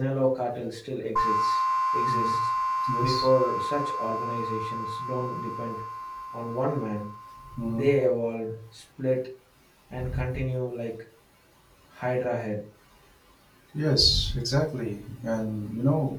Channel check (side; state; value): both; identical; correlation 1.00